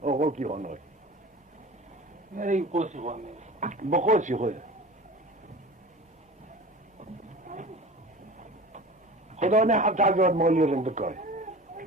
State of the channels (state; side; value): normal; both; correlation 0.37